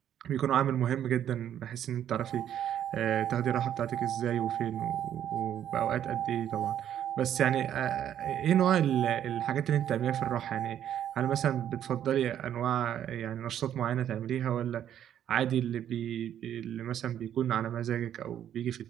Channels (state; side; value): quieter; left; 10.3 dB